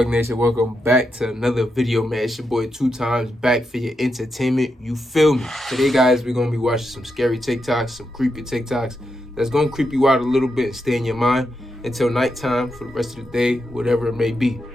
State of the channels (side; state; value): both; normal; correlation 0.85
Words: Nation? Welcome back to another video, man. It's your boy 2Times back for your entertainment. You feel me? Today, guys, we're going to be watching some scary TikToks, some creepy TikToks that's going to creep you out a little bit and stay in your mind until nighttime for the rest of the day, whatever it may be.